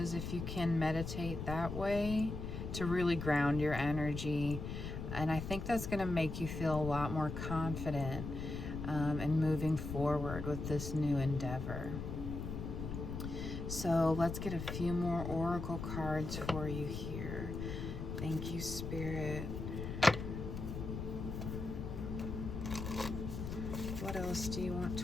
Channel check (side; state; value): left; noise; rumble, 5 dB below the sound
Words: if you can meditate that way, to really ground your energy. And I think that's going to make you feel a lot more confident in moving forward with this new endeavor. So let's get a few more oracle cards for you here. Thank you, Spirit. What else do you want